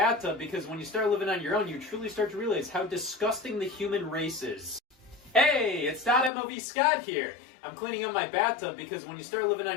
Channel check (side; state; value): right; drops out; at 6.3 s